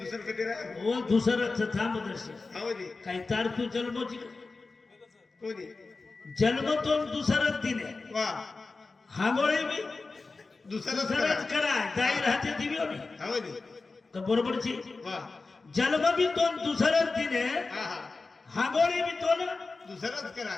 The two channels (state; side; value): quieter; right; 3.8 dB